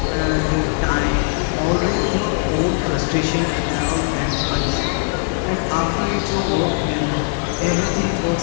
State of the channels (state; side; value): silent; right; 58 dB below the other